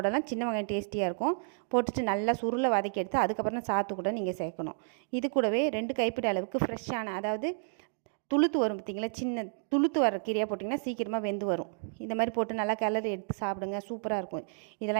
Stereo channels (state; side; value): silent; left; digital silence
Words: சின்ன வெங்காயம் டேஸ்டியாக இருக்கும். போட்டுட்டு நல்லா சுருளை வதக்கி எடுத்து அதுக்கப்புறம் சாத்து கூட நீங்கள் சேர்க்கணும். இது கூடவே 2 கைப்பிடி அளவுக்கு ஃப்ரெஷ்ஷான, அதாவது துளுத்து வரும் பார்த்திங்களா, சின்ன துளுத்து வர கீரையாக போட்டிங்கன்னா சீக்கிரமாக வெந்து வரும். இந்த மாதிரி போட்டு நல்லா கிளறி எடுத்து சாப்பிடுங்க. சூப்பராக இருக்கும்.